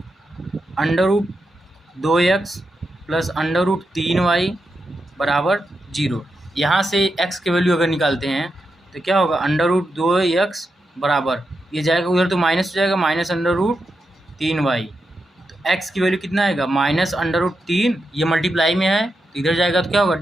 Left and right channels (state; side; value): normal; both; correlation 0.87